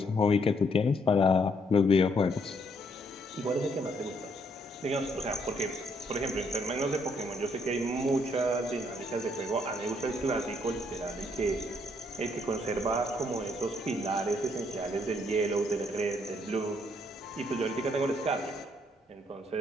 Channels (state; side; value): normal; both; correlation 0.70